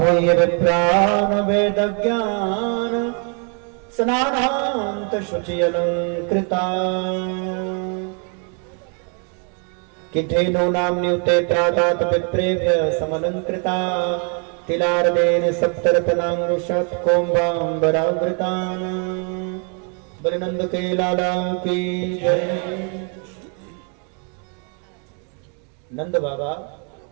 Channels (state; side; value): quieter; left; 39.5 dB